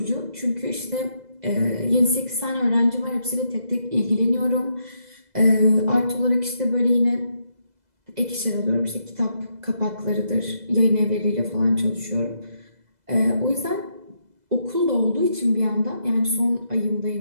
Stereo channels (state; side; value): late; left; 2.0 ms